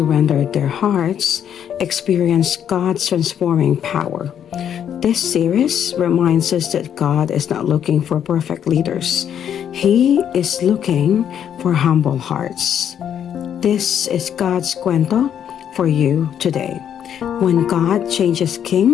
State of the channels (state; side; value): quieter; right; 9.1 dB